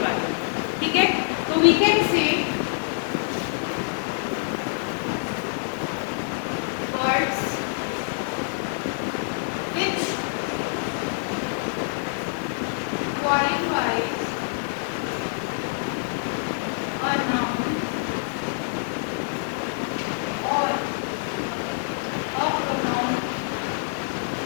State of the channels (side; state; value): right; silent; 61 dB below the other